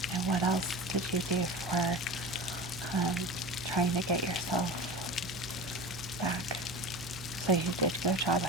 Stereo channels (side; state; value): right; noise; hum, 16 dB below the sound